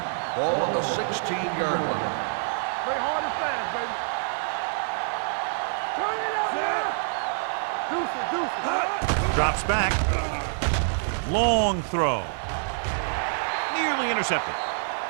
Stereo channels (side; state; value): left; silent; 61 dB below the other